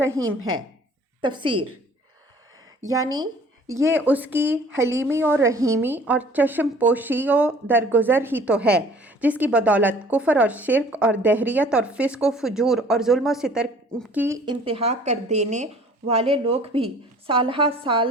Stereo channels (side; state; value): both; normal; correlation 0.51